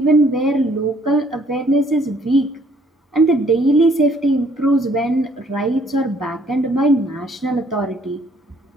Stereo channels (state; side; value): normal; both; correlation 0.62